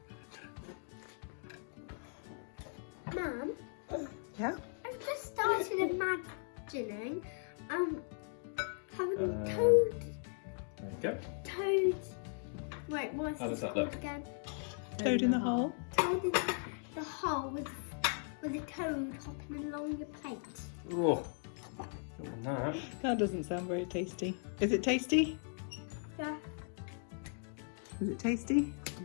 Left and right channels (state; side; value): silent; right; 53 dB below the other